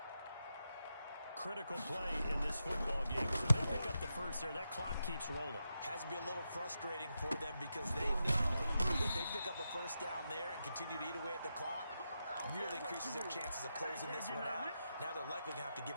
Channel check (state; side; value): inverted; both; correlation -0.87